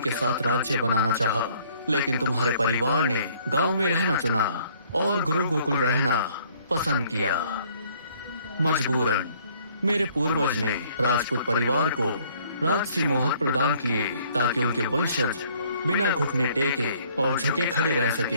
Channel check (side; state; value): both; inverted; correlation -0.61